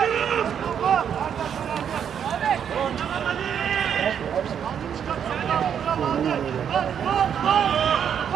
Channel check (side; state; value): left; quieter; 8.3 dB